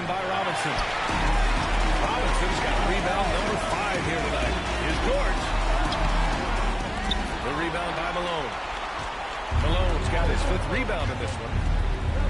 by Robinson. Robinson's got rebound number 5 here tonight. Here's George. The rebound by Malone. Malone's got his 5th rebound in this one.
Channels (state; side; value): identical; both; correlation 1.00